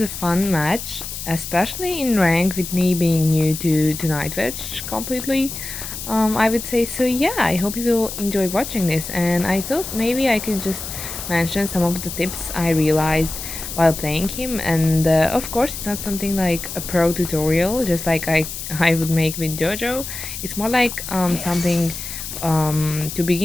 a fun match, especially in rank with me being new to Nightwatch completely. I would say so. Yeah, I hope you will enjoy watching this, and I thought maybe I could just mention some of the tips I realized while playing him. And of course, it's not something like a pro tutorial, just like I would make with JoJo. It's more like something to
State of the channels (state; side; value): noise; left; hiss, 8 dB below the sound